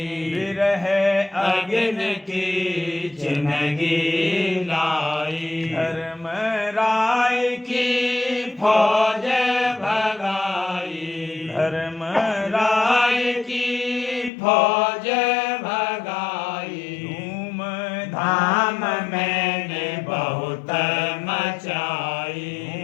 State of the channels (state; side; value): drops out; right; at 14.3 s